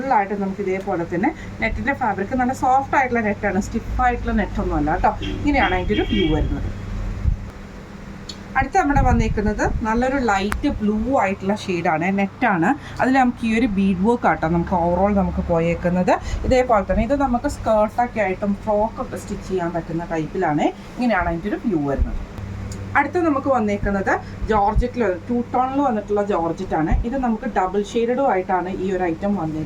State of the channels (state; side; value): identical; both; correlation 1.00